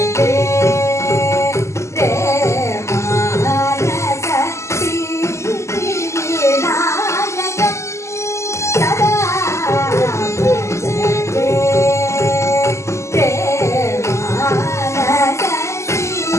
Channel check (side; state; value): right; late; 0.13 ms